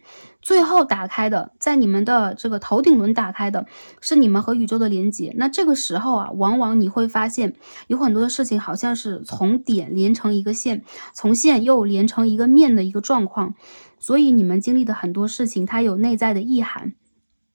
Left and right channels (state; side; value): inverted; both; correlation -1.00